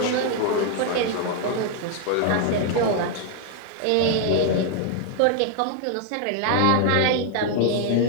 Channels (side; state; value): both; different; correlation 0.00